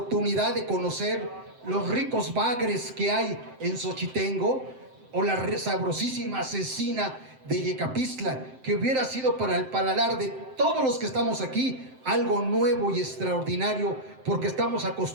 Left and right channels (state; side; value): late; left; 7.7 ms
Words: de conocer los ricos bagres que hay en Xochitengo o la sabrosísima cecina de Yecapistla, que hubiera sido para el paladar de todos los que estamos aquí algo nuevo y extraordinario, porque estamos